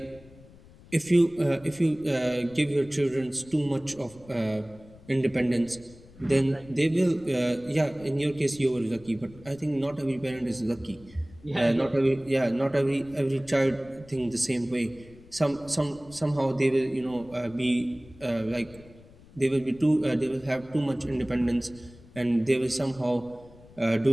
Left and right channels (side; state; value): left; noise; rumble, 22 dB below the sound